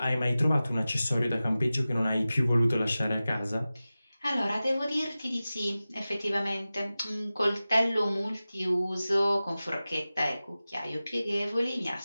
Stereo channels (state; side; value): inverted; both; correlation -0.96